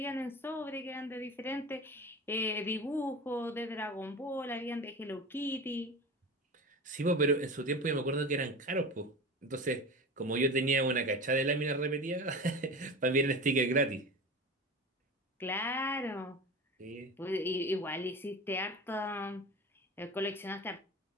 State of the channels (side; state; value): both; normal; correlation 0.31